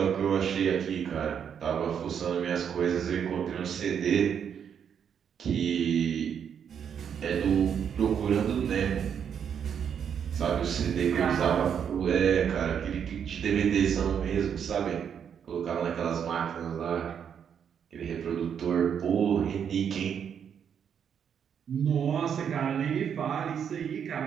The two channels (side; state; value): left; quieter; 7.9 dB